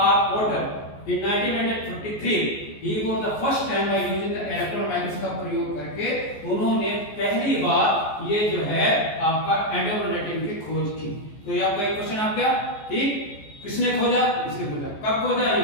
R. Porter in 1943. He was the first time by using the electron microscope का प्रयोग करके उन्होंने पहली बार ये जो है आपका एंडोप्लाज्मिक रेटिकुलम की खोज की. तो ये आपका एक क्वेश्चन आ गया. ठीक, किसने खोजा? इसने खोजा. कब खोजा? ये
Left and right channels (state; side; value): late; right; 14 ms